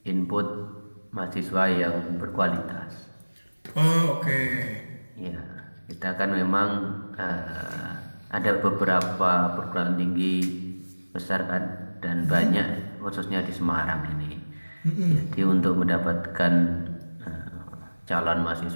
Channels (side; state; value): both; inverted; correlation -1.00